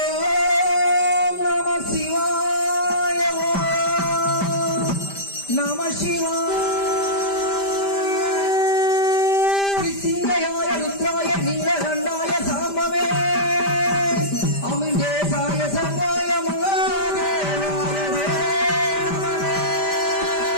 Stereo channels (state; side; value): late; right; 5.1 ms